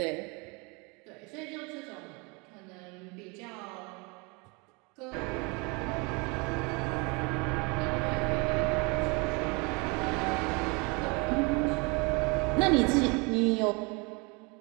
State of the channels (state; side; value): quieter; left; 29.7 dB